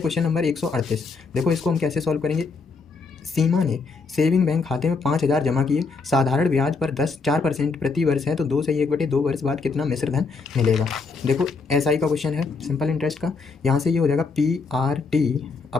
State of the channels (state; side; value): quieter; right; 4.4 dB